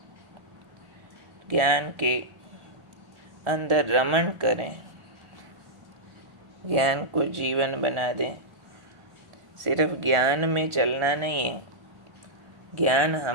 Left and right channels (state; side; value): late; left; 1.4 ms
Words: ज्ञान के अंदर रमण करें, ज्ञान को जीवन बना दें। सिर्फ ज्ञान में चलना नहीं है, ज्ञान